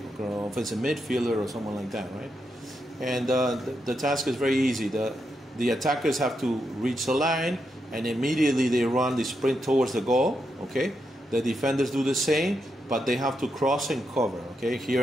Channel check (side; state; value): both; normal; correlation 0.83